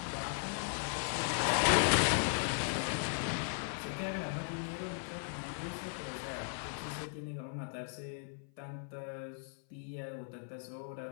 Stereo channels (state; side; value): silent; right; 53 dB below the other